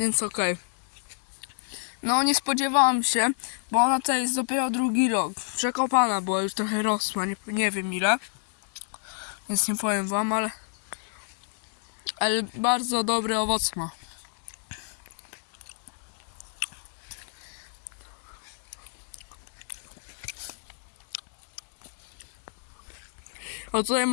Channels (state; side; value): silent; right; digital silence